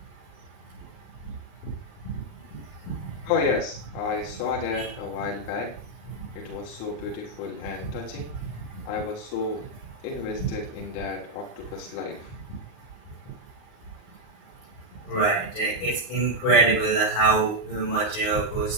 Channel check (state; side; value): late; right; 38 ms